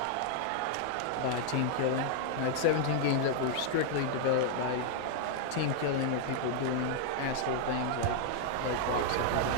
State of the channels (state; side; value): different; both; correlation 0.00